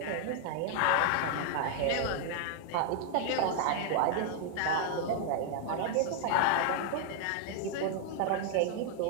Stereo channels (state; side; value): different; both; correlation 0.00